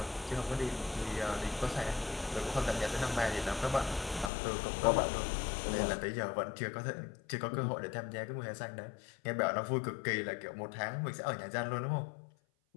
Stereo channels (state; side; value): drops out; right; at 4.3 s